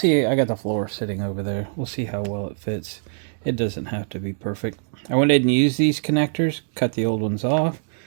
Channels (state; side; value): silent; left; digital silence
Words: I got the floor sitting over there. We'll see how well it fits. It doesn't have to be perfect. I went ahead and used these connectors. Cut the old ones off.